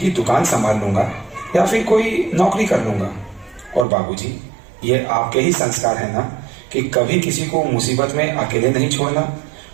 दुकान संभाल लूंगा या फिर कोई नौकरी कर लूंगा। और बाबूजी, ये आपके ही संस्कार है ना कि कभी किसी को मुसीबत में अकेले नहीं छोड़ना।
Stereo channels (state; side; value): drops out; left; at 3.9 s